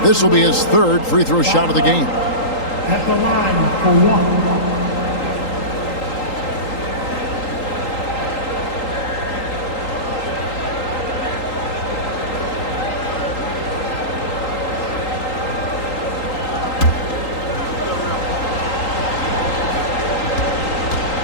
This will be his 3rd free throw shot of the game. At the line for 1.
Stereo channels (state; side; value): late; right; 3.8 ms